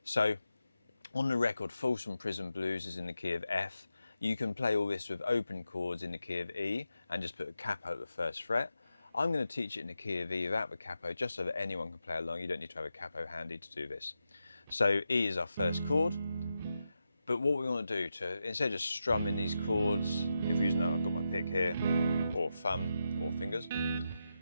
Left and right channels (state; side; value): inverted; both; correlation -0.88